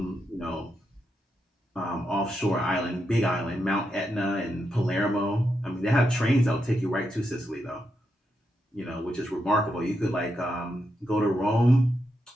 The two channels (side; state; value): both; normal; correlation 0.84